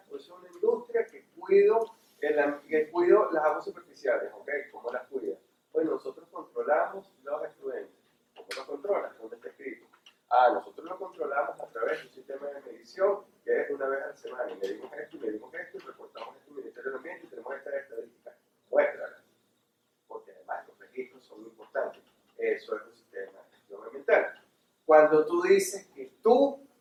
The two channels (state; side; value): identical; both; correlation 1.00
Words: yo soy una industria que cuido las aguas superficiales, ¿ok? ¿Cómo las cuida? Pues nosotros controlamos los efluentes. ¿Cómo lo controlas? ¿Dónde está escrito? Nosotros lo controlamos a través de un sistema de medición que es una vez a la semana. Y medimos esto, y reportamos esto al Ministerio del Ambiente y tenemos estas estadísticas. Muéstralas. Porque además los registros son importantes. Eso es un sistema de gestión ambiental. Cuando tú dices que tú